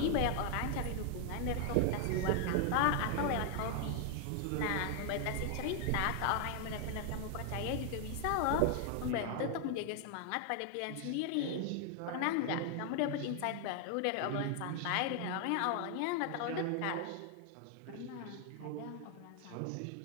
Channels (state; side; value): different; both; correlation 0.00